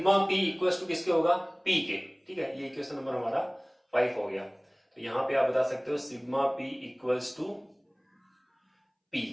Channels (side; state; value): both; identical; correlation 1.00